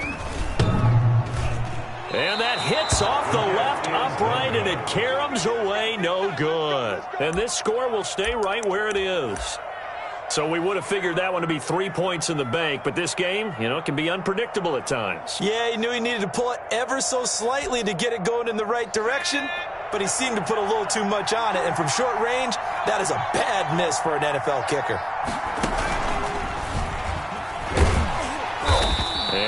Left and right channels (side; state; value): both; identical; correlation 1.00